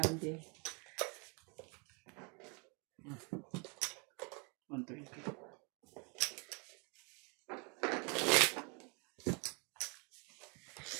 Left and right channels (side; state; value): left; quieter; 33.6 dB